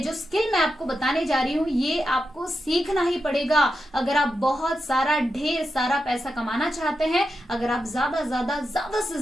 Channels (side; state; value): both; normal; correlation 0.88